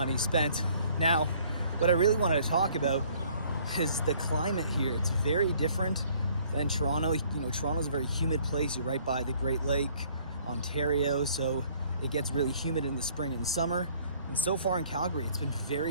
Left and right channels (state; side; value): inverted; both; correlation -0.59